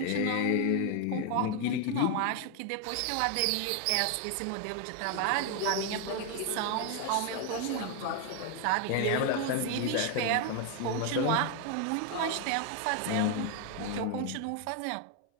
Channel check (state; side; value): different; both; correlation 0.01